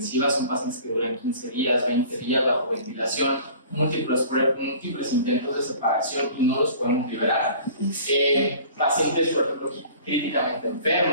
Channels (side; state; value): both; inverted; correlation -0.46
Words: son pacientes que duran 15 días, 20 días bajo ventilación, múltiples intentos de separación y no los podemos liberar. Pacientes, por ejemplo, críticamente